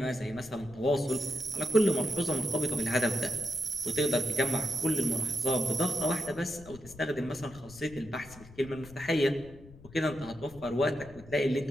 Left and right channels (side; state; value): left; noise; rumble, 19 dB below the sound